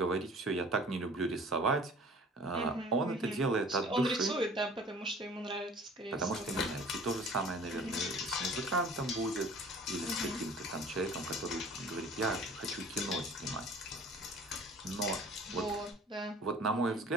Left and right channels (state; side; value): normal; both; correlation 0.47